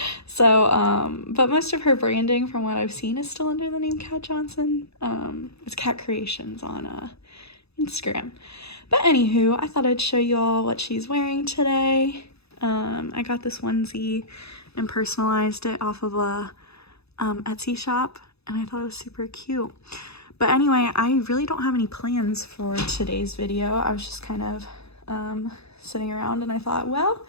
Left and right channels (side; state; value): right; late; 0.79 ms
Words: But most of her branding from what I've seen is still under the name Kat Johnson. It's Kat Creations on Instagram. But anywho, I thought I'd show you all what she's wearing today. I got this onesie and personalized it off of a Etsy shop, and I thought it was super cute. But anyway, I really don't have any plans for today's video. I was just kind of sitting around, and I thought, well,